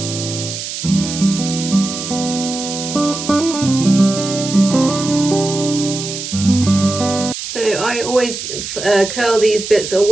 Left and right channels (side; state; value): right; noise; hiss, 7 dB below the sound